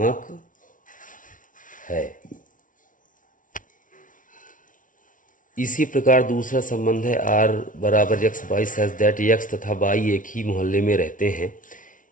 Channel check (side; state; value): right; late; 0.38 ms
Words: है। इसी प्रकार दूसरा संबंध है r बराबर x, y such that x तथा y एक ही मोहल्ले में रहते हैं।